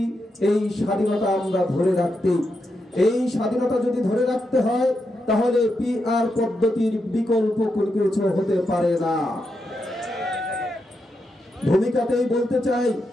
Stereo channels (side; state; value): both; normal; correlation 0.84